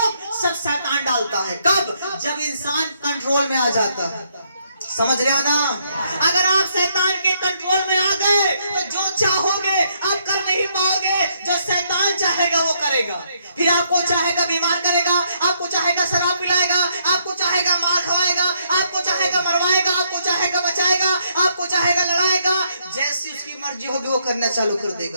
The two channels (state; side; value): inverted; both; correlation -0.72